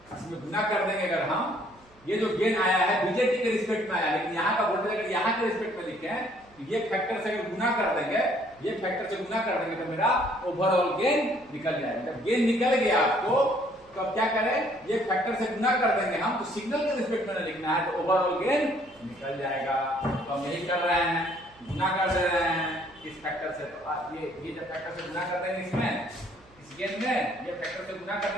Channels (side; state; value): right; noise; hum, 29 dB below the sound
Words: इसमें गुना कर देंगे। अगर हम ये जो गेन आया है बीजेटी के रिस्पेक्ट में आया, लेकिन यहाँ का वोल्टेज अगर यहाँ के रिस्पेक्ट में लिखे तो ये फैक्टर से अगर गुना कर देंगे, ये फैक्टर से गुना कर देंगे तो मेरा ओवरऑल गेन निकल जाएगा। जब गेन निकल गया आपको तो अब क्या करें? ये फैक्टर से गुना कर देंगे हम, तो सिग्नल के रिस्पेक्ट में लिखना है तो ओवरऑल गेन निकल जाएगा। तो हम यही कर रहे हैं, गुना कर दे रहे हैं इस फैक्टर से। तो ये जब फैक्टर से गुना कर देंगे इसमें, इस गेन में ये फैक्टर से गुना कर